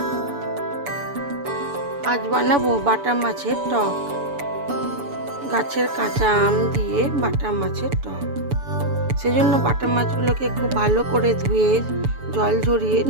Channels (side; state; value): left; late; 7.0 ms